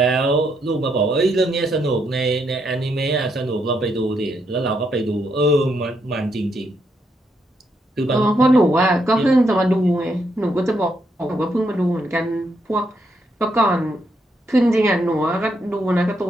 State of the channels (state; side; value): normal; both; correlation 0.78